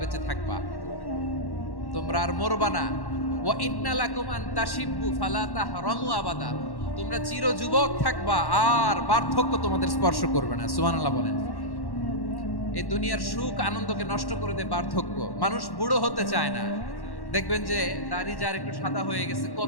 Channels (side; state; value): right; late; 1.1 ms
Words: বেঁচে থাকবা, তোমরা আর মরবা না। ওয়া ইন্না লাকুম আন তাশিব্বু ফালা তাহরামু আবাদা, তোমরা চির যুবক থাকবা, আর বার্ধক্য তোমাদের স্পর্শ করবে না। সুবহানাল্লাহ বলেন। এই দুনিয়ার সুখ আনন্দকে নষ্ট করে দেয় বার্ধক্য। মানুষ বুড়ো হতে চায় না। দেখবেন যে দাড়ি যার একটু সাদা হয়ে গেছে